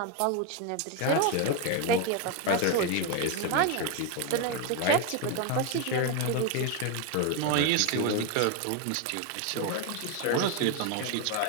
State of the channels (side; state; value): both; different; correlation 0.02